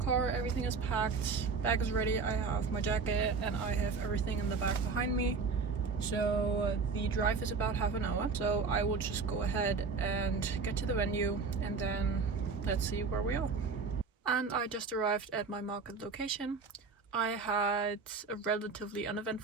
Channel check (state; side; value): quieter; left; 4.8 dB